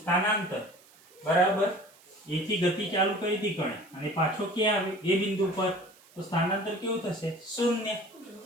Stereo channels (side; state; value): right; noise; hiss, 27 dB below the sound